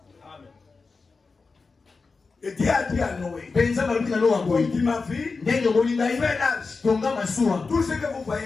Et Dieu a dit à Noé, comme tu m'as vu, fais l'âge. Tout ce que vous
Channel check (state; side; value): quieter; right; 4.3 dB